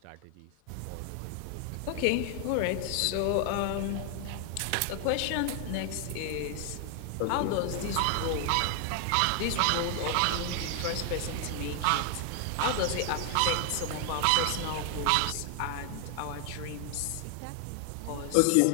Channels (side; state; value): both; different; correlation 0.00